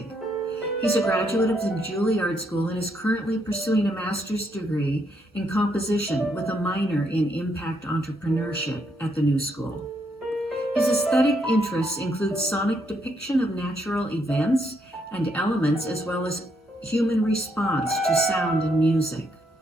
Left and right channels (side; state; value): both; normal; correlation 0.75